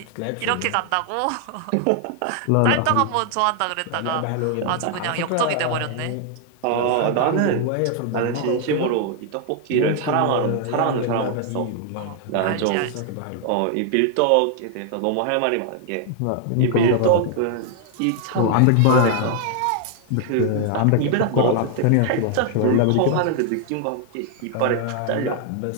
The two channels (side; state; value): both; different; correlation 0.00